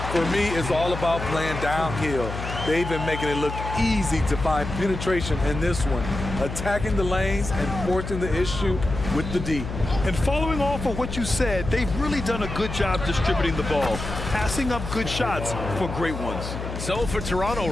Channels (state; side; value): noise; left; hum, 7 dB below the sound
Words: For me, it's all about playing downhill. They've been making it look easy to find penetration in this one, attacking the lanes and forcing the issue with the D. And following off of what you said, they've really done a good job distributing the ball, passing up good shots for great ones. So for Toronto